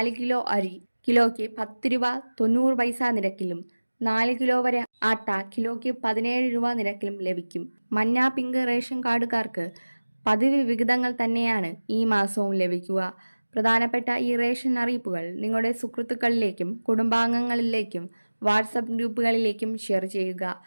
കിലോ അരി കിലോയ്ക്ക് 10 രൂപ 90 പൈസ നിരക്കിലും 4 കിലോ വരെ ആട്ട കിലോയ്ക്ക് 17 രൂപ നിരക്കിലും ലഭിക്കും. മഞ്ഞ, പിങ്ക് റേഷൻ കാർഡുകാർക്ക് പതിവ് വിഹിതങ്ങൾ തന്നെയാണ് ഈ മാസവും ലഭിക്കുക. പ്രധാനപ്പെട്ട ഈ റേഷൻ അറിയിപ്പുകൾ നിങ്ങളുടെ സുഹൃത്തുക്കളിലേക്കും കുടുംബാംഗങ്ങളിലേക്കും വാട്സപ്പ് ഗ്രൂപ്പുകളിലേക്കും ഷെയർ ചെയ്യുക.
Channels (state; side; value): inverted; both; correlation -1.00